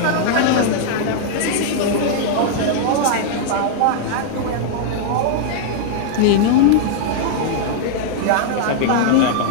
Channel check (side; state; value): both; different; correlation -0.01